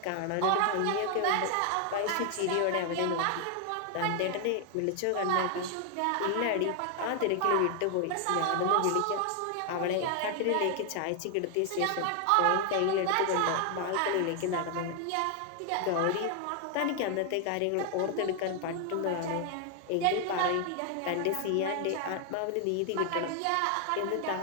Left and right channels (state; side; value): different; both; correlation 0.00